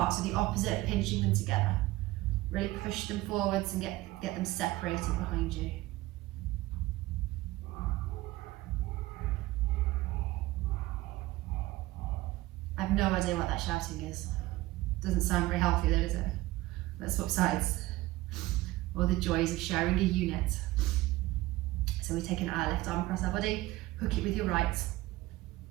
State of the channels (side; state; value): left; quieter; 18.2 dB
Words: so the opposite, pinching them together. Really push them forwards and get them separated behind you. I have no idea what that shouting is. Doesn't sound very healthy though, does it? Let's swap sides. Or the joys of sharing a unit. So we're taking our left arm across our body, hook it with your right.